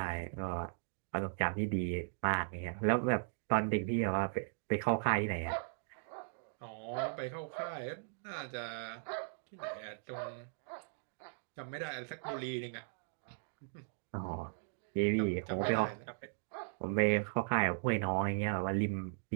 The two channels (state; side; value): silent; left; digital silence